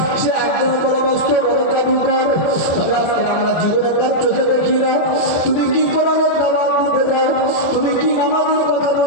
সে একজন বড় মস্ত বড় জাদুকর, আজকে আমরা জীবনে তার চোখে দেখি না। তুমি কি কোরআনের দাওয়াত দিতে যাও, তুমি কি নামাজের কথা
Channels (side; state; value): right; late; 24 ms